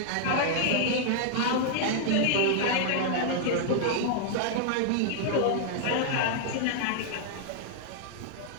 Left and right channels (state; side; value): different; both; correlation -0.01